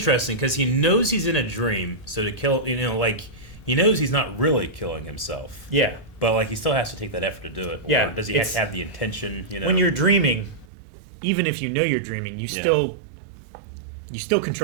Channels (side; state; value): left; drops out; at 10.7 s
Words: because he knows he's in a dream, so to kill, you know, like he knows he's not really killing himself, Yeah. but like he still has to take that effort to do it. Yeah, Or does he have it's- to have the intention? You know, When you're dreaming, even if you know you're dreaming, you still